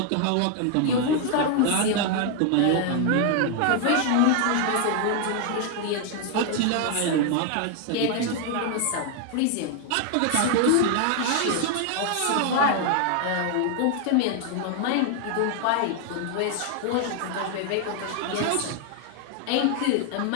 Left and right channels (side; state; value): both; different; correlation 0.00